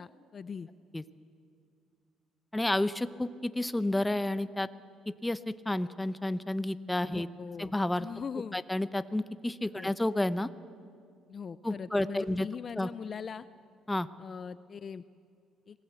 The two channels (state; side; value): normal; both; correlation 0.98